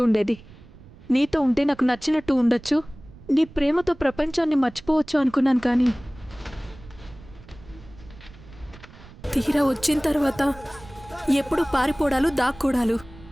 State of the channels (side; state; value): right; noise; rumble, 21 dB below the sound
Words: ఉండేది. నీతో ఉంటే నాకు నచ్చినట్టు ఉండొచ్చు. నీ ప్రేమతో ప్రపంచాన్ని మర్చిపోవచ్చు అనుకున్నాను, కానీ తీరా వచ్చిన తర్వాత ఎప్పుడు పారిపోవడాలు, దాక్కోడాలు.